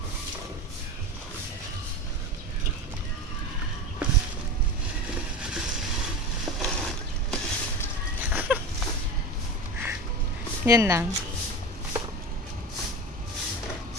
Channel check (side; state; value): both; normal; correlation 0.28